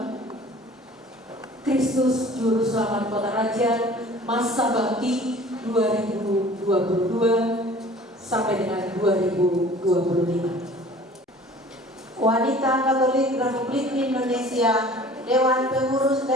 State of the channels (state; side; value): normal; both; correlation 0.47